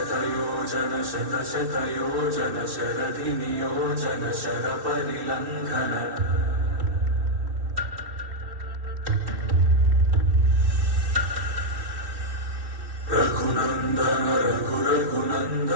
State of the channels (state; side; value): late; left; 2.7 ms